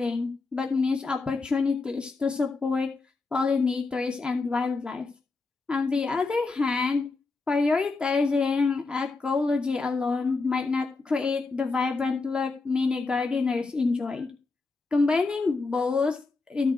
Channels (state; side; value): quieter; right; 3.9 dB